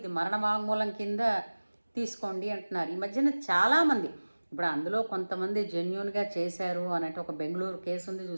మరణ వాంగ్మూలం కింద తీసుకోండి అంటున్నారు. ఈ మధ్యన చాలామంది, ఇప్పుడు అందులో కొంతమంది జెన్యూన్గా చేశారు అనంటే ఒక బెంగళూరు కేసు ఉంది,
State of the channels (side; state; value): both; inverted; correlation -1.00